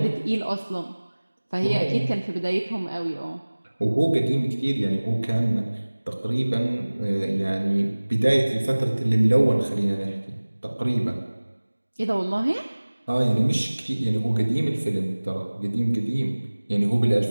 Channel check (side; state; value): both; inverted; correlation -1.00